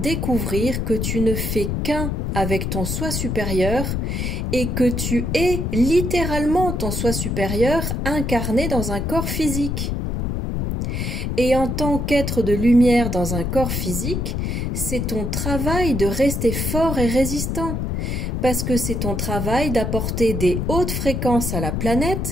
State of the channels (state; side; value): noise; left; rumble, 1 dB below the sound